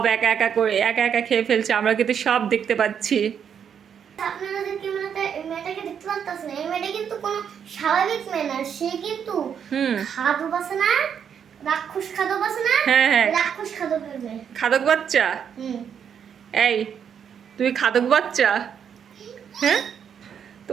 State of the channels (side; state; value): left; quieter; 7.9 dB